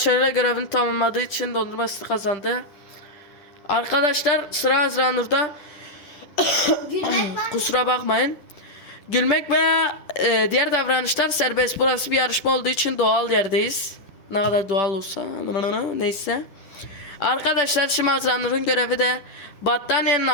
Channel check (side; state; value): right; late; 10 ms